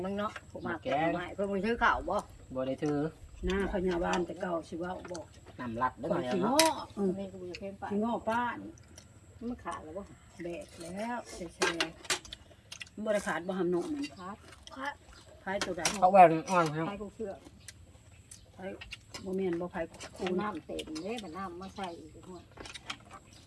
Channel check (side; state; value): both; identical; correlation 1.00